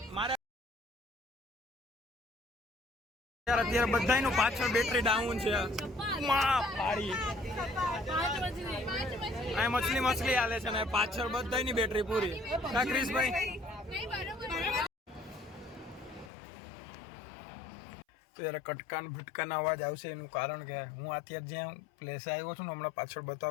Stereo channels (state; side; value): drops out; right; at 16.3 s